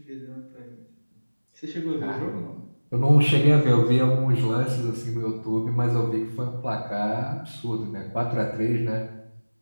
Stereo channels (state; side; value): inverted; both; correlation -1.00